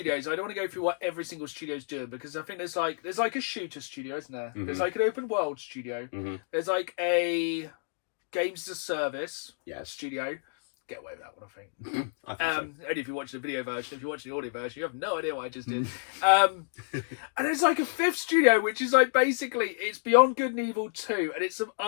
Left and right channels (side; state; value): right; silent; digital silence